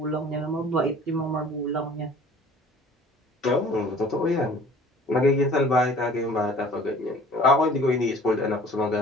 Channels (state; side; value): normal; both; correlation 0.49